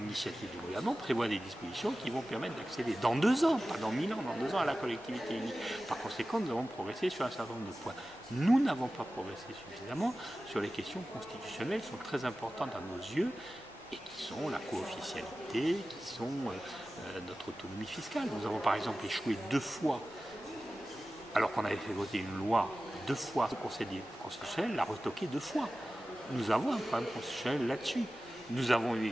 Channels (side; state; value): both; normal; correlation 0.95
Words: du gouvernement, prévoit des dispositions qui vont permettre d'accéder dans 2 ans, pas dans 1000 ans, dans 2 ans à la collectivité unique. Par conséquent, nous avons progressé sur un certain nombre de points. Nous n'avons pas progressé suffisamment sur les questions constitutionnelles qui sont très importantes à nos yeux et qui sont la co-officialité, qui sont notre autonomie fiscale. Nous avons par exemple échoué 2 fois, alors qu'on avait fait voter une loi 2 fois, le Conseil constitutionnel l'a retoqué 2 fois. Nous avons un problème constitutionnel là-dessus. Nous avons eu